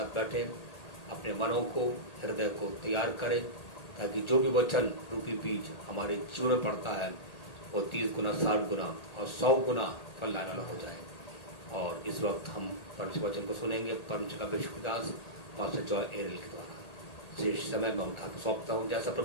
बैठे अपने मनों को, हृदय को तैयार करें ताकि जो भी वचन रूपी बीज हमारे जीवन में पड़ता है वो 30 गुना, 60 गुना और 100 गुना फल लाने वाला हो जाए। और इस वक्त हम परमेश्वर वचन को सुनेंगे। परमेश्वर का अभिषिक्त दास पास्टर जॉय एरल के द्वारा शेष समय में उनका सौंपता हूँ। जैसा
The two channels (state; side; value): late; right; 1.8 ms